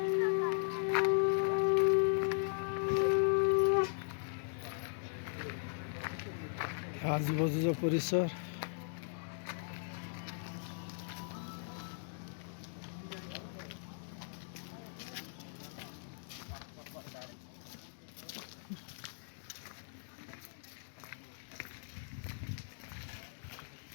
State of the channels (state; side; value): silent; right; digital silence